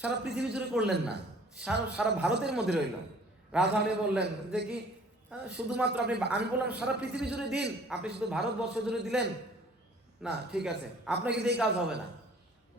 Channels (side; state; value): both; normal; correlation 0.53